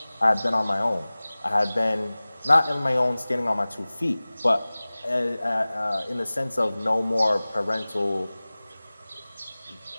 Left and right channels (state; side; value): inverted; both; correlation -0.99